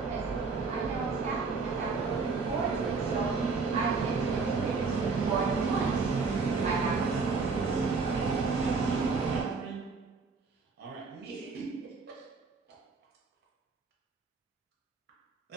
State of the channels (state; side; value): quieter; left; 4.5 dB